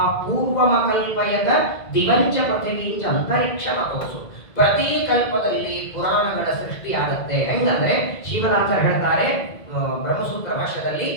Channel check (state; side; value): late; right; 2.0 ms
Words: ಪೂರ್ವಮ ಕಲ್ಪಯದ ದಿವಂಚ ಪೃಥಿವೀಂಚ ಅಂತರಿಕ್ಷ ಮತೋಸು. ಪ್ರತಿ ಕಲ್ಪದಲ್ಲಿ ಪುರಾಣಗಳ ಸೃಷ್ಟಿ ಆಗುತ್ತೆ. ಹೆಂಗಂದ್ರೆ ಶ್ರೀಮದಾಚಾರ್ಯ ಹೇಳ್ತಾರೆ ಬ್ರಹ್ಮಸೂತ್ರ ಭಾಷ್ಯದಲ್ಲಿ,